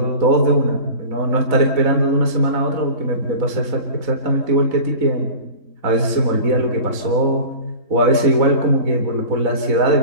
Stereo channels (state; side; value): late; left; 4.0 ms